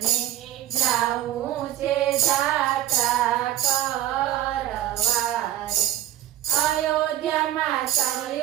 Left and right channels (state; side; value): quieter; left; 13.1 dB